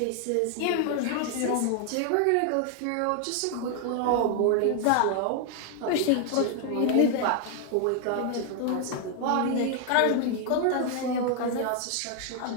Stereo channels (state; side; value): different; both; correlation 0.00